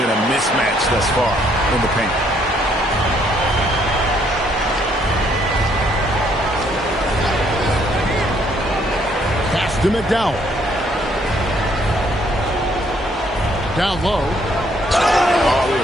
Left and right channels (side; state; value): both; normal; correlation 0.67